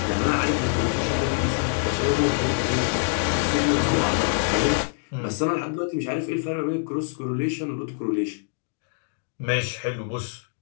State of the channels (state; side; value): silent; right; digital silence